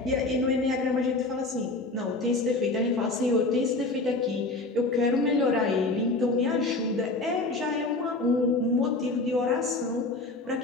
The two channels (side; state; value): right; quieter; 3.1 dB